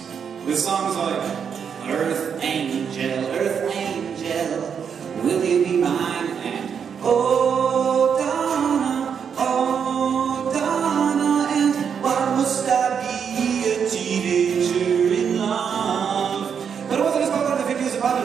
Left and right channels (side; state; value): left; quieter; 7.2 dB